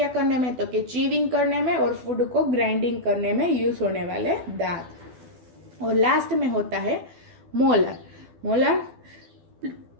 करने में, तो कि चीविंग करने में और फूड को ग्राइंडिंग करने में यूज होने वाले दांत। और लास्ट में होता है मोलर। मोलर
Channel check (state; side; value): late; left; 12 ms